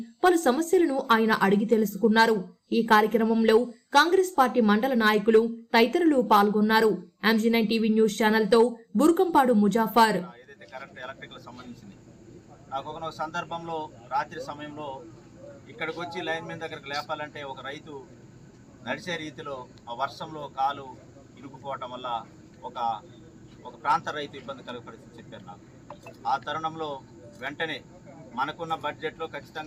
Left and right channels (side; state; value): both; identical; correlation 1.00